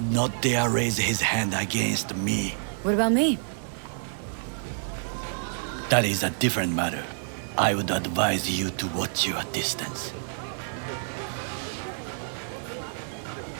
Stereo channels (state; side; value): silent; left; digital silence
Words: not dare raise his hand against me. What about me? That is a different matter. I would advise you to watch your distance.